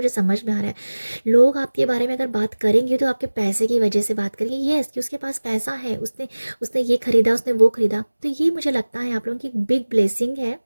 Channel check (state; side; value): inverted; both; correlation -1.00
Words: समझ में आ रहा है। लोग आपके बारे में अगर बात करेंगे तो आपके पैसे की वजह से बात करेंगे, यस कि उसके पास पैसा है, उसने उसने ये खरीदा, उसने वो खरीदा। तो ये मुझे लगता है आप लोगों की बिग ब्लेसिंग है